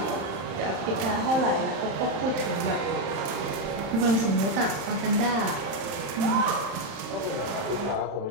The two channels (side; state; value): left; late; 31 ms